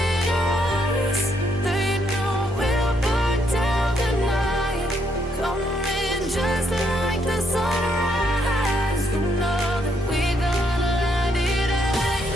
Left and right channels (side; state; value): both; normal; correlation 0.74